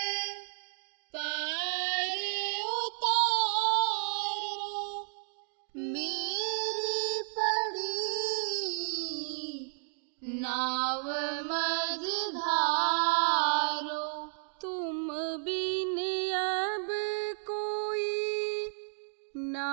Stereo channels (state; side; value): silent; left; digital silence